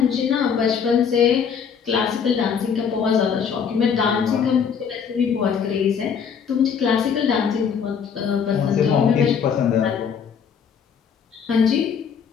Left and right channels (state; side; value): quieter; right; 7.0 dB